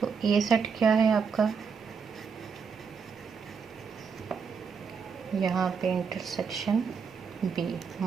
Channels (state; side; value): quieter; left; 5.9 dB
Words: ए सेट क्या है आपका, यहाँ पे इंटरसेक्शन बी,